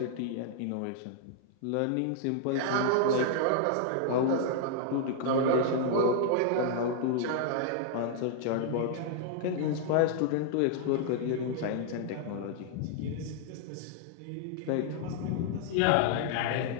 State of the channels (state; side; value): different; both; correlation -0.01